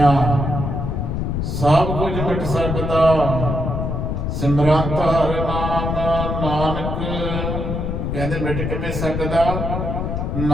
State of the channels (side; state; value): left; noise; rumble, 2 dB below the sound